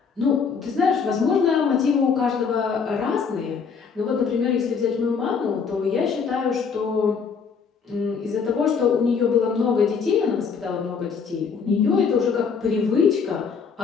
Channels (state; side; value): quieter; right; 5.8 dB